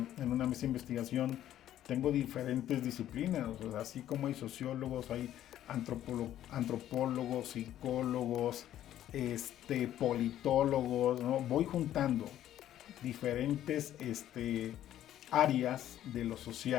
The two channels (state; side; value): quieter; right; 12.1 dB